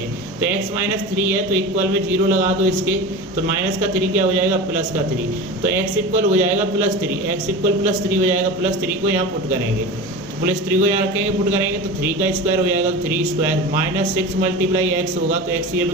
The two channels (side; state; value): both; normal; correlation 0.30